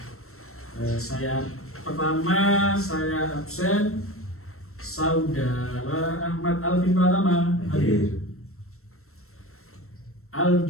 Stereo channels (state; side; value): late; right; 0.63 ms